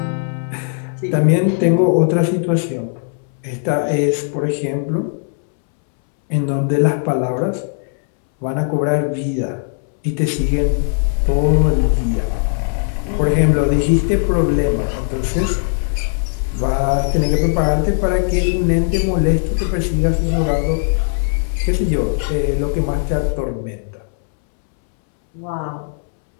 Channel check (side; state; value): right; silent; 66 dB below the other